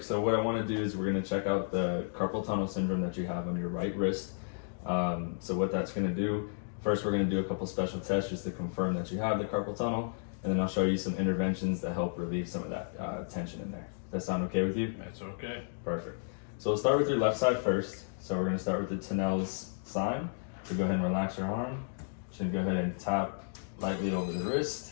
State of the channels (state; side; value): silent; right; digital silence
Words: So what I want to do is we're going to check out the carpal tunnel syndrome that you have on your right wrist. So what that's going to do, first we're going to do a couple special tests just to confirm that you have the carpal tunnel, and then I'll show you some interventions that help relieve some of that tension in there. Does that sound okay with you? That's okay. Perfect. So we'll start with your left side first. So we're going to start with the Tunnel's sign. So go ahead and relax your arm. Just go ahead and tap lightly over the wrist.